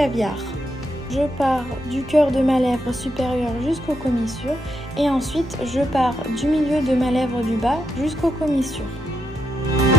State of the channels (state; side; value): normal; both; correlation 0.82